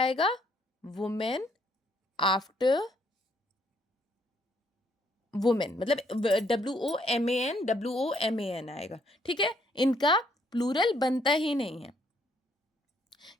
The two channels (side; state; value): both; normal; correlation 0.69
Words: आएगा? वुमेन आफ्टर वुमेन, मतलब WOMAN आएगा। ठीक है, इनका प्लूरल बनता ही नहीं है।